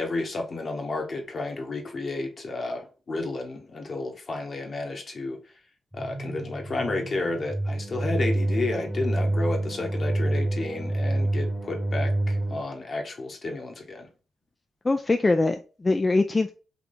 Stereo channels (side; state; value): both; normal; correlation 0.93